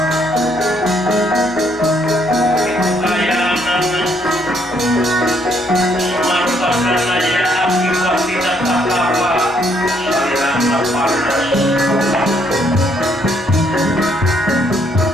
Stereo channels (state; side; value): normal; both; correlation 0.70